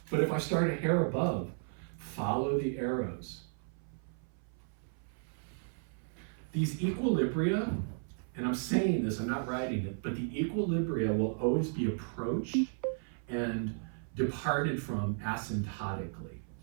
But if I start a hair above, follow the arrows. These equilibria, and I'm saying this, I'm not writing it, but the equilibria will always be approached and departed from asymptotically.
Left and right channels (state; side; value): silent; left; 55 dB below the other